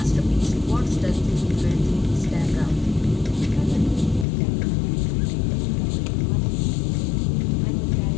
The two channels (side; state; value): right; drops out; at 4.2 s